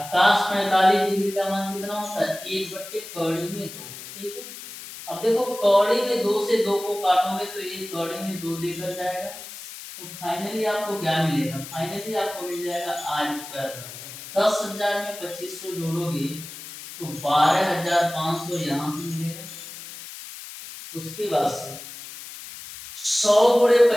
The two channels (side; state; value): left; noise; hiss, 13 dB below the sound